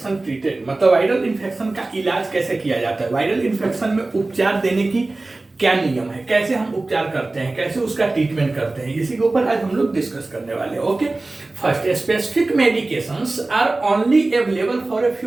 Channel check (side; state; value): left; quieter; 3.1 dB